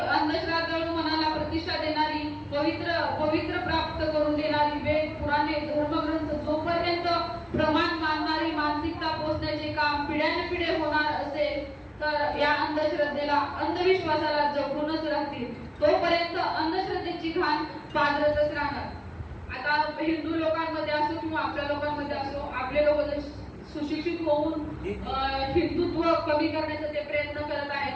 मनाला प्रतिष्ठा देणारी पवित्र प्राप्त करून देणारी वेद पुराणे धर्मग्रंथ जोपर्यंत प्रमाण मानणारी मानसिकता पोचण्याचे काम पिढ्यानपिढे होणार असेल तर या अंधश्रद्धेला अंधविश्वासाला जगूनच राहतील. तोपर्यंत अंधश्रद्धेची घाण पाजरतच राहणार. आता हिंदू लोकांमध्ये असो किंवा आपल्या लोकांमध्ये असो, आपले लोक जर सुशिक्षित होऊन हिंदुत्व कमी करण्याचा ते प्रयत्न करत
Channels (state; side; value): identical; both; correlation 1.00